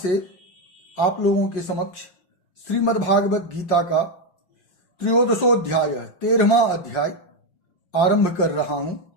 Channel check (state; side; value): late; right; 5.6 ms